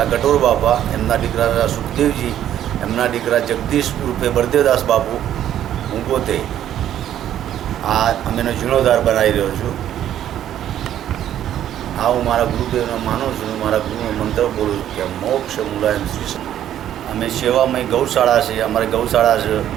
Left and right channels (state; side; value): quieter; left; 11.2 dB